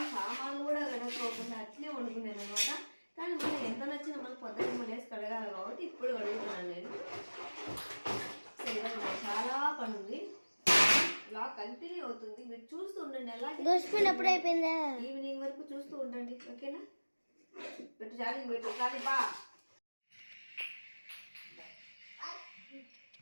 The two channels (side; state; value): both; inverted; correlation -1.00